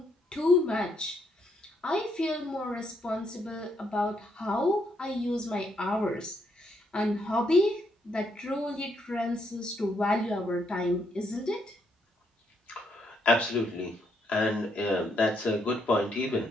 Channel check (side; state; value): both; normal; correlation 0.75